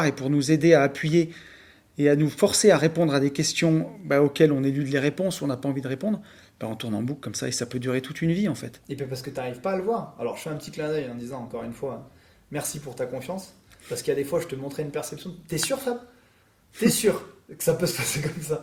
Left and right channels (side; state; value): both; identical; correlation 1.00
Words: et pour nous aider à appuyer et à nous forcer à répondre à des questions auxquelles on élude les réponses ou on n'a pas envie de répondre, on tourne en boucle comme ça et ça peut durer toute une vie en fait. Et puis parce que tu n'arrives pas à le voir. Alors je fais un petit clin d'œil en disant encore une fois, merci pour ta confiance. Parce qu'il y a des fois, je te montrais une perception. T'es sûr, Fab? T'es sûr que ça peut se passer comme ça?